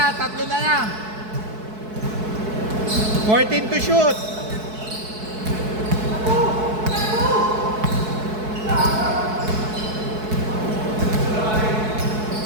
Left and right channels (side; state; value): left; late; 4.6 ms